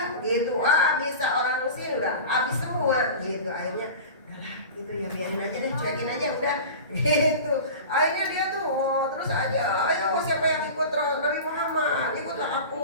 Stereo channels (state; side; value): inverted; both; correlation -0.33